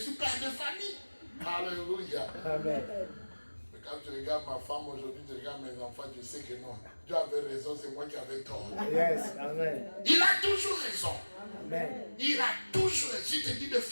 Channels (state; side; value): inverted; both; correlation -1.00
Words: père de famille. Alléluia. Amen. Mais Quand tu regardes ma femme aujourd'hui, tu regardes mes enfants, tu sais que non. Dieu avait raison, c'est moi qui avais tort. Yes. Amen. Il a toujours raison. Amen. Il a toujours raison. Si tu te dis de